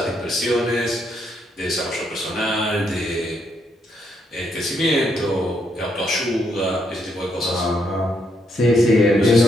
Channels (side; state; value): both; normal; correlation 0.76